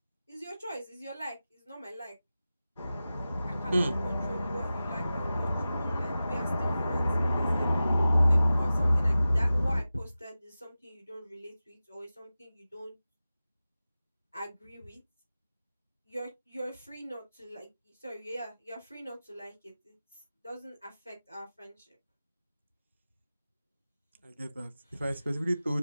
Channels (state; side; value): inverted; both; correlation -0.95